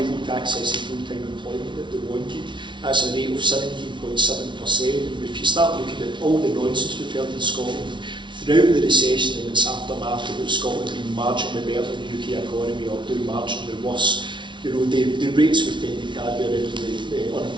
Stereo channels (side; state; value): left; late; 0.24 ms